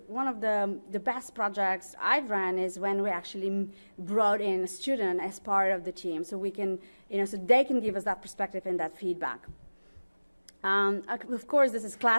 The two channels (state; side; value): inverted; both; correlation -1.00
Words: the best projects I've run is when we actually brought in a student as part of the team, so we can, so they can give us that perspective and that feedback. Of course, this is